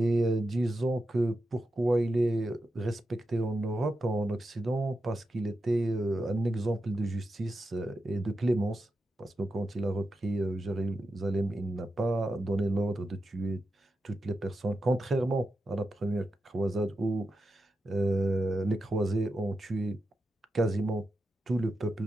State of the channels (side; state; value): both; normal; correlation 0.89